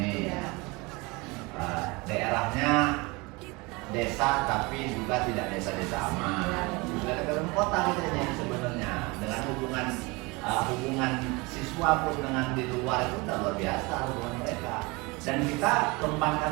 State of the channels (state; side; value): quieter; left; 25.2 dB